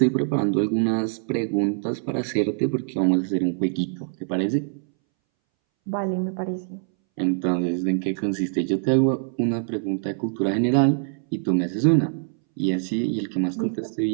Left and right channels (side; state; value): left; silent; 62 dB below the other